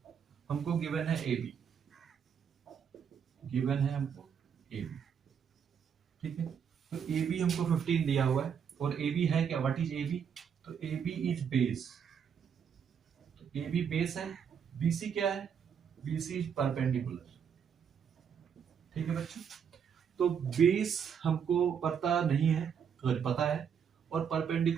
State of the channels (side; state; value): left; quieter; 7.5 dB